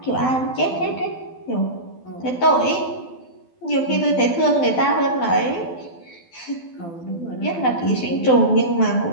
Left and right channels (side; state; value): right; late; 12 ms